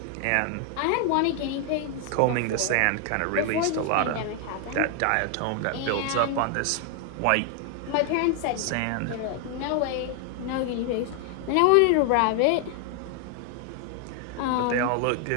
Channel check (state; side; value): different; both; correlation 0.00